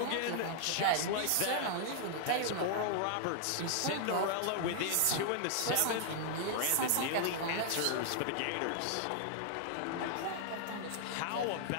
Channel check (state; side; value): different; both; correlation 0.00